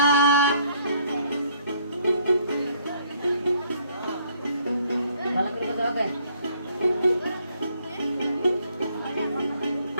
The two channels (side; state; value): both; inverted; correlation -0.65